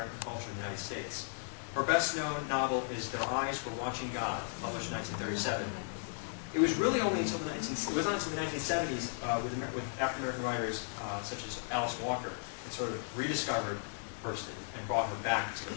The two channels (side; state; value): right; silent; 54 dB below the other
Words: culture in the United States. Her best-known novel is Their Eyes Were Watching God, published in 1937. It was really only until the 1970s with African-American writers such as Alice Walker that sort of rediscovered Hurston and brought her back to